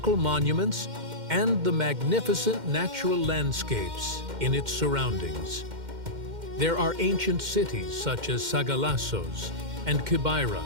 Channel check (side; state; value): left; late; 2.1 ms